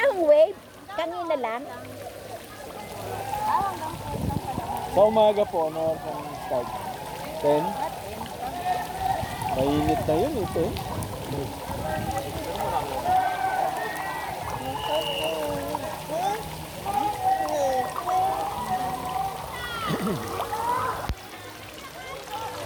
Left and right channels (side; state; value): both; identical; correlation 1.00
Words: hong wave. Kanina lang. Sa umaga po, ano ang start? 10? Mainit na yun ito.